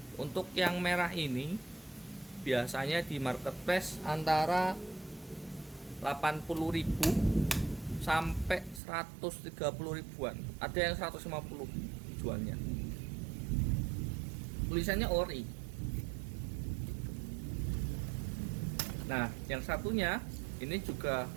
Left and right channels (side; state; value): left; drops out; at 8.8 s